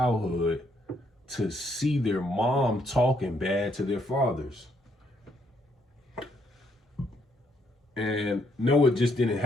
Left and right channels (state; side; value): normal; both; correlation 0.72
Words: to see their mom talking bad to their fathers. And no, it just didn't